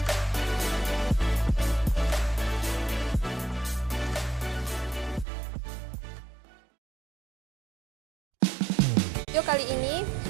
Video kali ini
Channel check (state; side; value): drops out; left; at 5.2 s